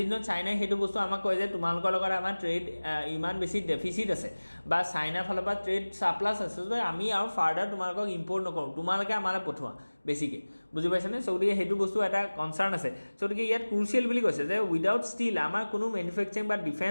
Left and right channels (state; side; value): inverted; both; correlation -1.00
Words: দিনত চাইনাই সেইটো বস্তু আমাক কয় যে তোমালোকৰ লগত আমাৰ ট্ৰেড ইমান বেছি ডেফিচিট আছে বা চাইনাৰ ফালৰ পৰা ট্ৰেড ছাপ্লাছ আছে যে আমি আৰু ফাৰ্ডাৰ তোমালোকক ইম্পৰ্ট নকৰোঁ তোমালোকে আমালৈ পঠোৱা বেছিকৈ বুজি পাইছেনে চ' গতিকে সেইটো বস্তু এটা কনচাৰ্ণ আছে চ' গতিকে ইয়াত ক্ৰুচিয়েল বুলি কৈছে যে উইদাউট ষ্টিল আমাৰ কোনো মেনুফেকচাৰিং বা